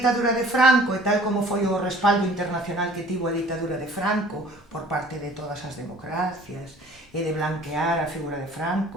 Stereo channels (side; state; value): both; normal; correlation 0.50